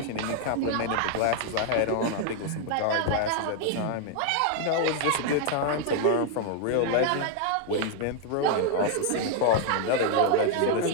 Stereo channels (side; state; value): both; different; correlation 0.00